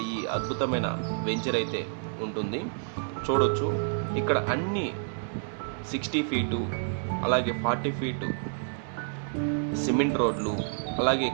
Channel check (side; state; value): left; silent; digital silence